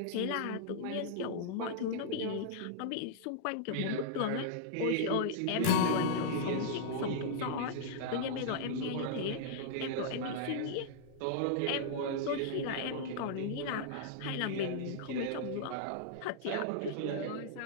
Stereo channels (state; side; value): different; both; correlation -0.02